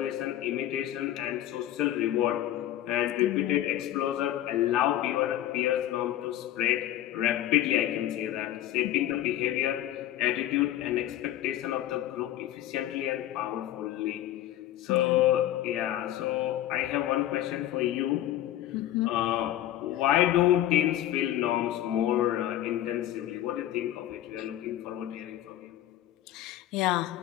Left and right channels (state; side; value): quieter; right; 13.0 dB